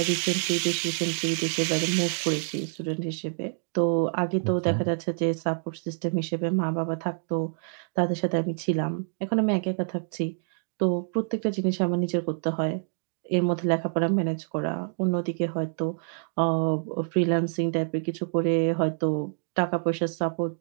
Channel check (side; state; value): left; silent; digital silence